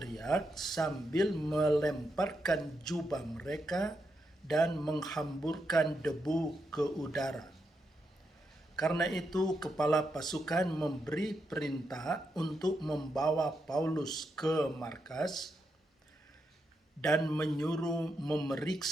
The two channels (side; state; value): both; normal; correlation 0.83